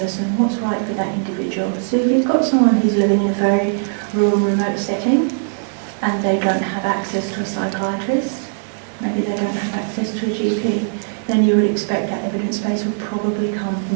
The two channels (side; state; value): left; silent; digital silence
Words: What's right for that individual? So if you've got someone who's living in a very rural, remote setting and they don't have access to a psychiatrist, maybe they don't have access to a GP, then you would expect that evidence base would probably come